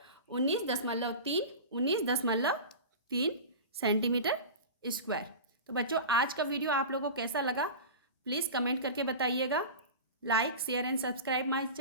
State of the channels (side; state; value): both; inverted; correlation -0.30